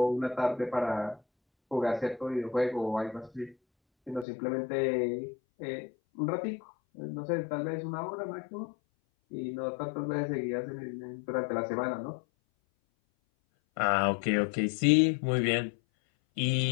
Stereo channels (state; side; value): drops out; right; at 4.2 s